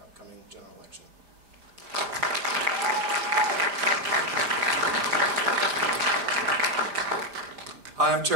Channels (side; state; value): left; late; 5.0 ms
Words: upcoming general election. Hi, I'm